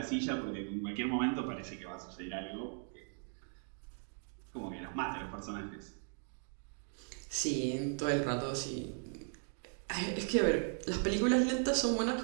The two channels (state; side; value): silent; left; 53 dB below the other